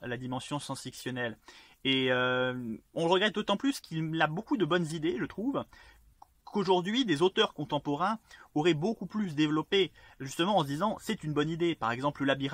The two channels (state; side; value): identical; both; correlation 1.00